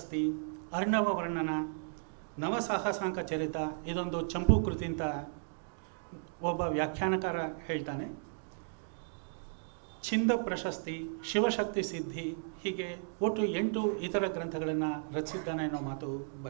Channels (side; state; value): left; silent; digital silence